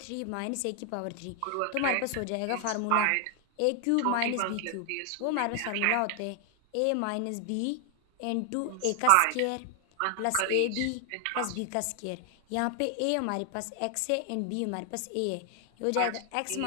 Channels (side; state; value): both; different; correlation 0.00